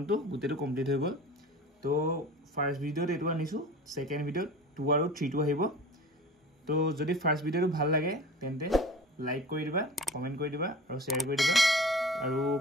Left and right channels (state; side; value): normal; both; correlation 0.39